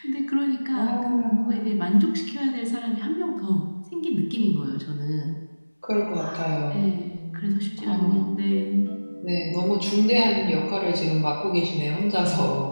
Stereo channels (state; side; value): inverted; both; correlation -1.00